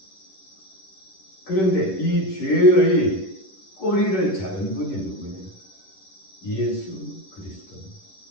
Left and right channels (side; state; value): right; late; 11 ms